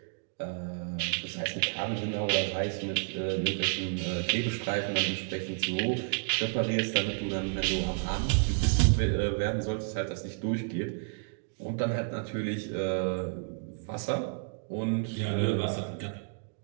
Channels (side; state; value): left; silent; digital silence